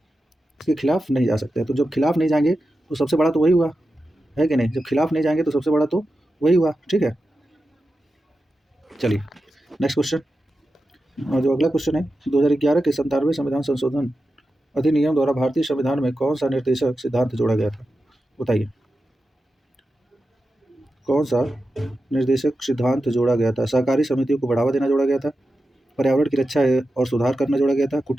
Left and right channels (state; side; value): normal; both; correlation 0.91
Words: इसके खिलाफ नहीं जा सकते हैं। तो जब खिलाफ नहीं जाएंगे तो सबसे बड़ा तो वही हुआ, है कि नहीं? जब खिलाफ नहीं जाएंगे तो सबसे बड़ा तो वही हुआ, ठीक है। चलिए नेक्स्ट क्वेश्चन। और जो अगला क्वेश्चन है, 2011 के 97वें संविधान संशोधन अधिनियम द्वारा भारतीय संविधान में कौन सा निर्देशक सिद्धांत जोड़ा गया था? बताइए, कौन सा निर्देशक सिद्धांत जोड़ा गया था? सहकारी समितियों को बढ़ावा देना जोड़ा गया था, पर्यावरण की रक्षा और सुधार करना जोड़ा गया था,